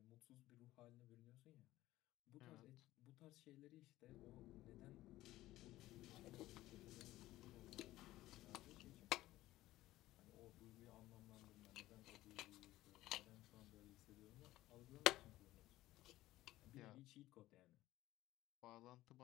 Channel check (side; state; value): right; quieter; 16.2 dB